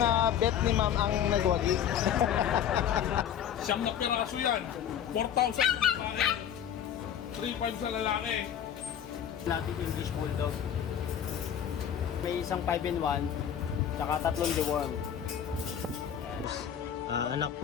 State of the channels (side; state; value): right; quieter; 9.3 dB